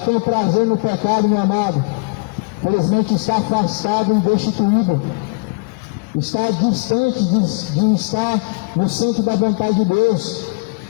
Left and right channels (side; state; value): right; quieter; 29.4 dB